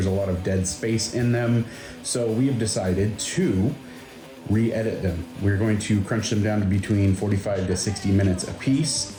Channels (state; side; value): identical; both; correlation 1.00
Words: a lot of dead space in them. So we have decided to re-edit them. We're going to crunch them down to between 45 to 60 minutes a